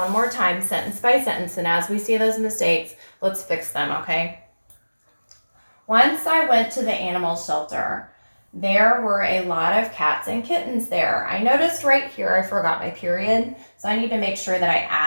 more time, sentence by sentence, and as we see those mistakes, let's fix them, okay? Once I went to the animal shelter. There were a lot of cats and kittens there. I noticed right here I forgot my period, so I need to make sure that I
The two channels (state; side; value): inverted; both; correlation -1.00